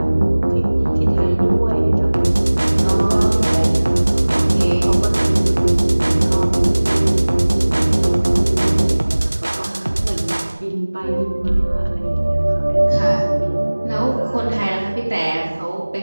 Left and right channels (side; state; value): both; inverted; correlation -1.00